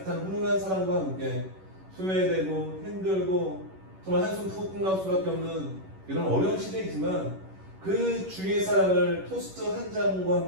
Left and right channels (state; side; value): late; left; 11 ms